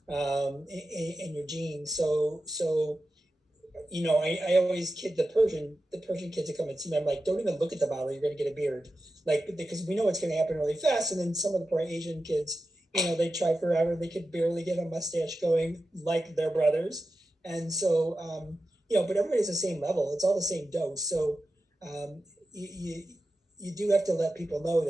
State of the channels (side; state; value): both; normal; correlation 0.92